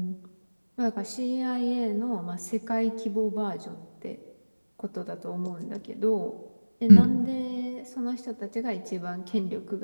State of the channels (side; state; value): both; inverted; correlation -1.00